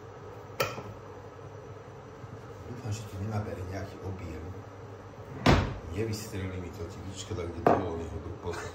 Dúfam, že to nenabere nejaký objem. Nevystrelí mi to typička, tak kde bolo neho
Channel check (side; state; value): both; identical; correlation 1.00